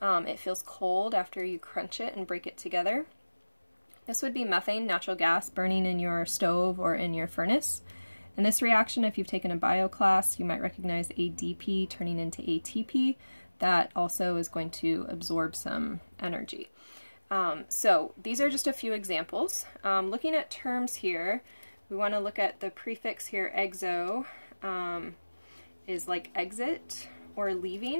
It feels cold after you crunch it and break it together. This would be methane, natural gas, burning in your stove or in your furnace. And this reaction, if you've taken a bio class, you might recognize ADP turning into ATP. That also is going to absorb some energy. So these are just a few examples. Looking at terms here, we want to look at the prefix here, exo, is like exit or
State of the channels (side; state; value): both; inverted; correlation -1.00